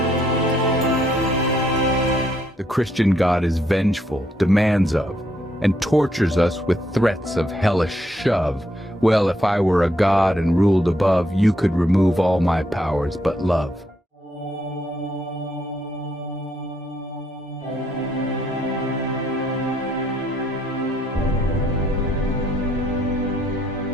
The Christian God is vengeful, demands of, and tortures us with threats of hellish shove. Well, if I were a god and ruled above, you could remove all my powers but love.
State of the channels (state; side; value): normal; both; correlation 0.73